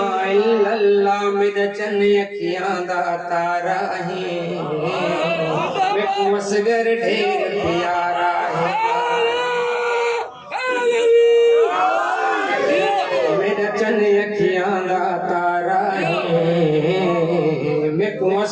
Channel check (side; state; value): both; identical; correlation 1.00